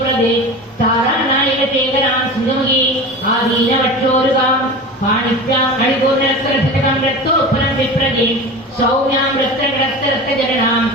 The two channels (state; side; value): normal; both; correlation 0.31